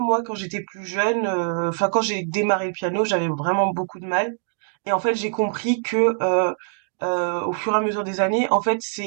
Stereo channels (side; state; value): left; silent; digital silence